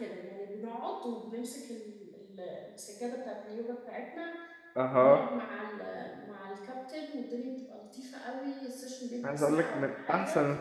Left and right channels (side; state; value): both; identical; correlation 1.00